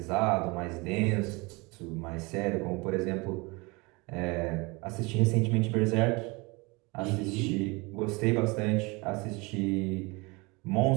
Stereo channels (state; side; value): quieter; left; 26.4 dB